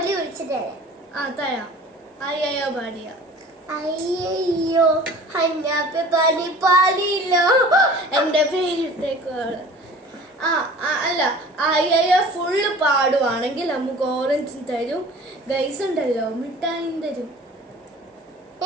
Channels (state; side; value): normal; both; correlation 0.44